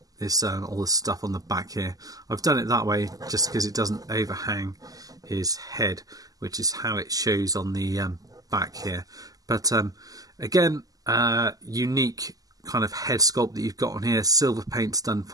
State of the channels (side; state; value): left; late; 0.17 ms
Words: all the stuff on the back here. I've done it that way just because it doesn't overhang his head, which is how it shows on the back here. But again, unique kind of head sculpt that you've got on here. Silver paint's done